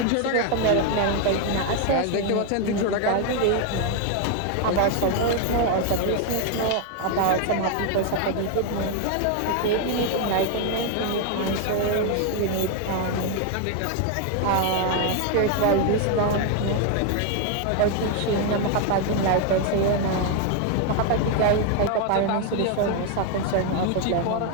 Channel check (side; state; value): both; different; correlation 0.00